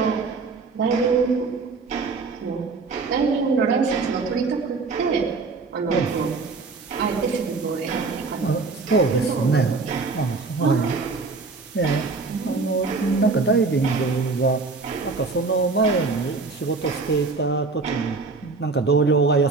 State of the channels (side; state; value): left; quieter; 4.1 dB